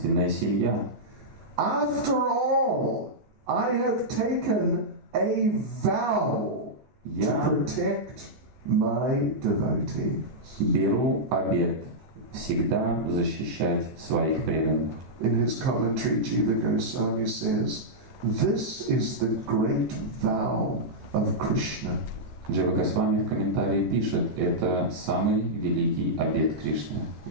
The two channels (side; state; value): left; late; 14 ms